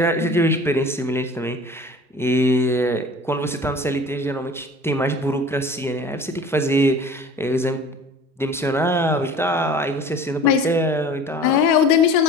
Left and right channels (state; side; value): normal; both; correlation 0.42